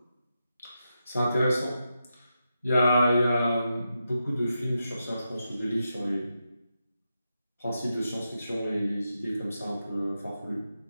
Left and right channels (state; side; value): inverted; both; correlation -0.87